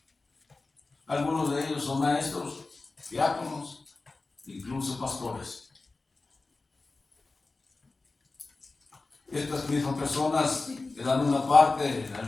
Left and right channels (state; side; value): quieter; right; 3.6 dB